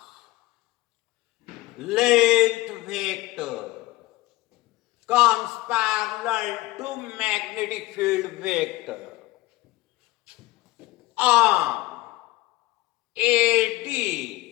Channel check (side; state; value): right; quieter; 19.0 dB